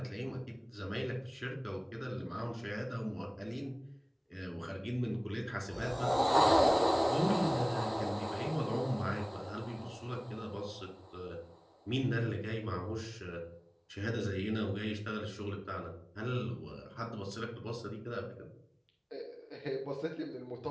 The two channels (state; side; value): identical; both; correlation 1.00